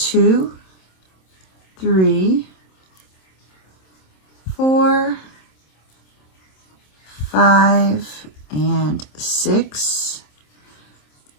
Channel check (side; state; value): right; late; 27 ms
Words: 3, 4, 5, and 6.